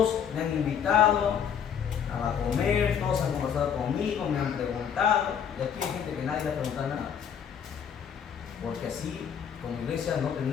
me han invitado a comer, todos han conversado conmigo, me han preguntado, y aquí hay gente que nadie le ha preguntado nada, porque así como iglesia no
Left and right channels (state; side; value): quieter; right; 8.0 dB